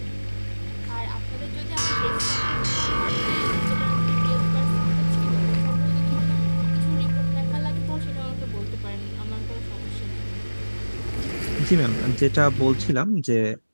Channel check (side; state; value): both; inverted; correlation -1.00